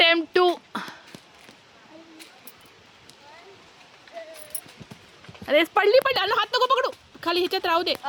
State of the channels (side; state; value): both; identical; correlation 1.00